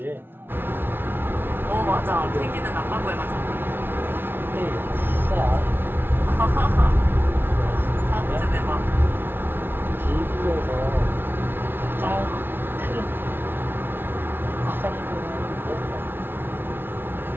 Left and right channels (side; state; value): left; late; 0.10 ms